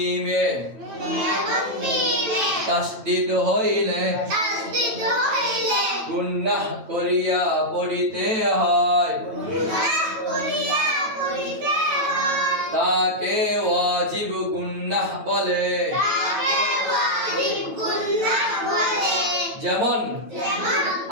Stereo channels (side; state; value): left; late; 9.0 ms